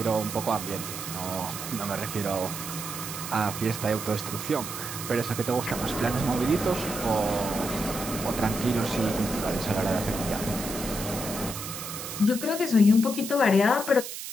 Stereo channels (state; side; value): noise; right; hiss, 8 dB below the sound